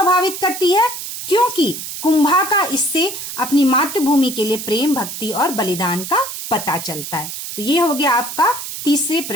करती है? क्योंकि कुंभा का इससे अपनी मातृभूमि के लिए प्रेम, भक्ति और बलिदान का पता चलता है। तो ये हो गया आपका तीसरे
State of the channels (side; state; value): right; noise; hiss, 8 dB below the sound